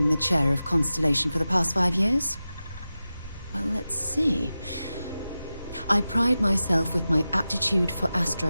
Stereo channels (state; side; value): inverted; both; correlation -0.94